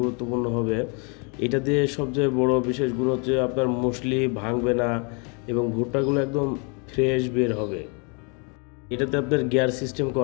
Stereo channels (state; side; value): quieter; right; 34.7 dB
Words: হবে। এটা দিয়ে সবচেয়ে বড় বিশেষ গুণ হচ্ছে আপনার মুসলি ভাঙবে না এবং ভুট্টাগুলো একদম ফ্রেশ বের হবে। এটাতে আপনার গিয়ার সিস্টেম